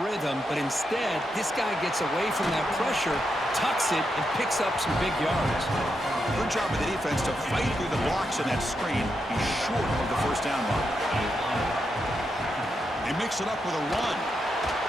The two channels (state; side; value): normal; both; correlation 0.84